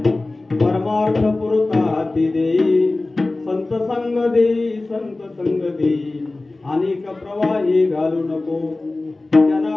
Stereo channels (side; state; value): right; quieter; 3.1 dB